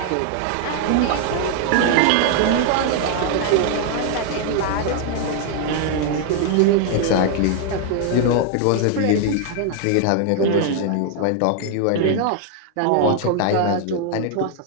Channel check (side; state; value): both; different; correlation 0.00